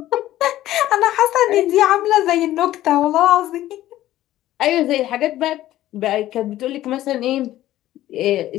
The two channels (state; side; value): quieter; right; 14.2 dB